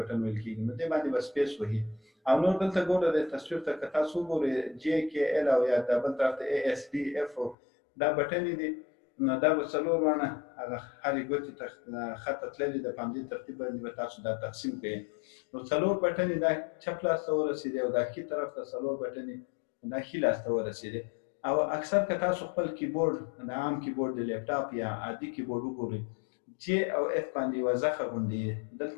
ویل کېږي، نو دې باندې به سپیس وهي او نور دلته ګوره د تصویر ته که تاسو وګورئ جې کې ایل او یا دا بل طرف ته ای اس ډي اف دا بټنې دي، نو دا به څلور وانه هغه هرې ګوتې ته خطه تللې ده، په همدې ترتیب باندې به تاسو دا تقسیم کړئ. نو څلور بټنې دا چپ لاس ته ورسېدې او دا ښي طرف ته څلور بټنې دا ښي لاس ته ورسېدې. او اکثر که تاسو خپل کیبورډ د عام کیبورډ د لیپټاپ یا عادي کیبورډ وګورئ جې او اف باندې یوه زخه غوندې دلته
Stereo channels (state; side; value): drops out; right; at 7.6 s